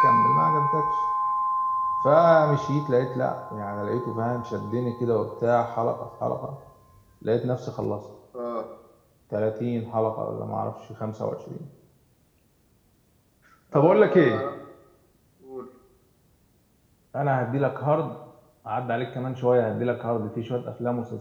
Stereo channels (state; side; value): identical; both; correlation 1.00